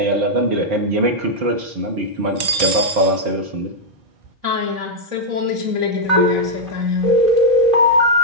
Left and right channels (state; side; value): late; left; 4.5 ms